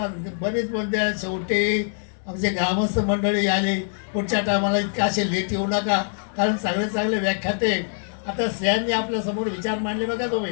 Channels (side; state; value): right; silent; digital silence